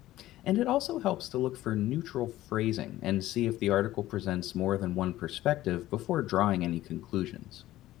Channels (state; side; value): quieter; right; 15.2 dB